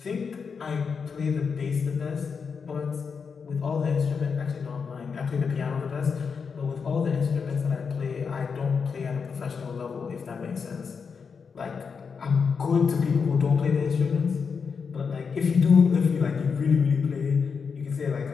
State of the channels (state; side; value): quieter; right; 5.8 dB